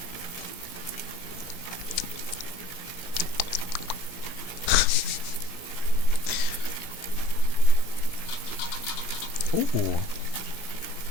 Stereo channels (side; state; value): right; late; 17 ms